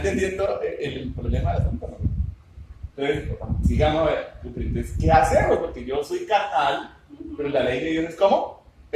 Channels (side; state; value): both; identical; correlation 1.00